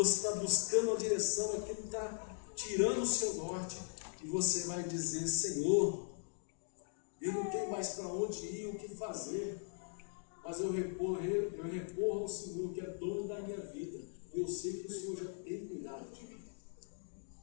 está buscando a direção, aquilo que está tirando o seu norte, e você vai dizer: Senhor, eu não tenho mais para onde ir, o que fazer, mas eu recorro ao Senhor, que é dono da minha vida, e eu sei que o Senhor já tem cuidado de mim.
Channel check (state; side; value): silent; right; digital silence